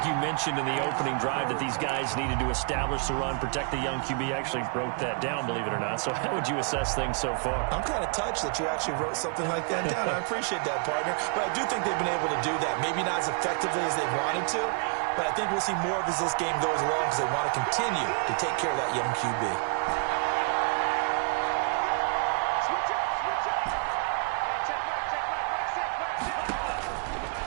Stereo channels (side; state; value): left; quieter; 37.8 dB